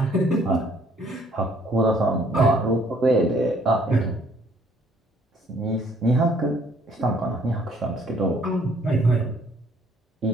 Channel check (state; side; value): normal; both; correlation 0.62